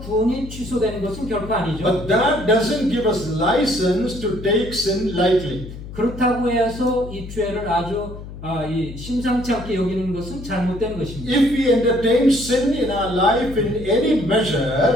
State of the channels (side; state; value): left; noise; hum, 12 dB below the sound